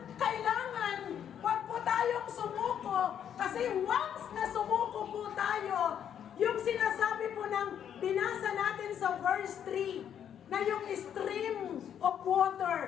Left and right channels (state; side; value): quieter; right; 9.1 dB